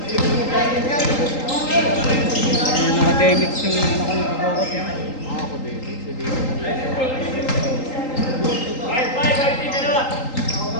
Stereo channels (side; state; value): right; late; 3.8 ms